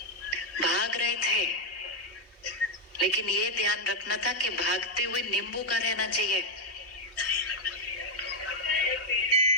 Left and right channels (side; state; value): both; normal; correlation 0.00